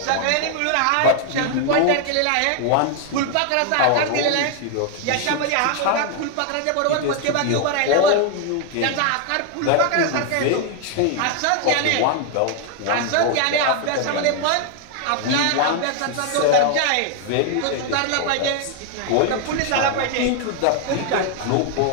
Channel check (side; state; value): both; different; correlation 0.00